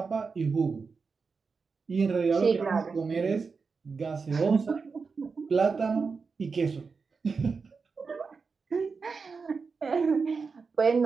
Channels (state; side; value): quieter; left; 4.9 dB